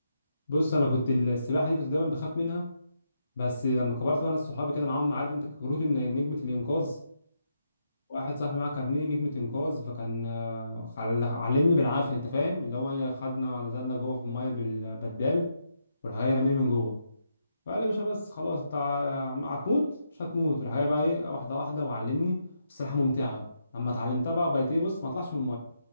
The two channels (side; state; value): both; inverted; correlation -0.81